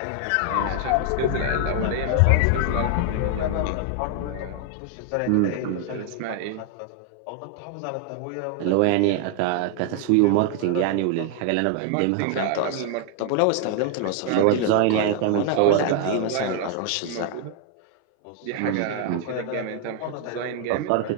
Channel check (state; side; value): different; both; correlation 0.00